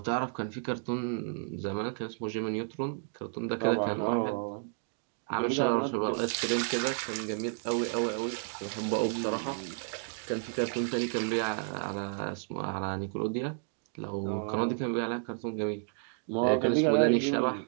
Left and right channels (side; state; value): left; silent; 57 dB below the other